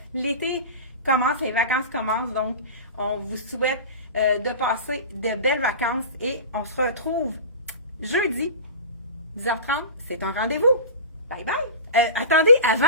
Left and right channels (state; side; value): inverted; both; correlation -0.32